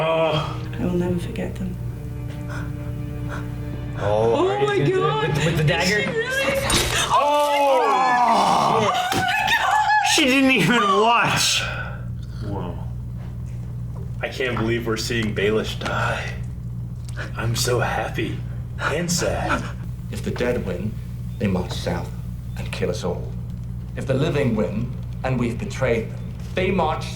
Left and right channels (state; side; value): identical; both; correlation 1.00